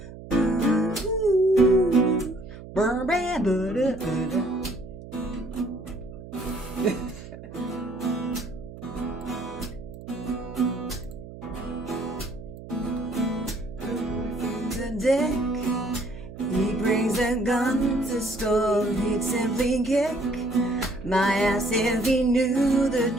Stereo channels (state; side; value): noise; right; hum, 14 dB below the sound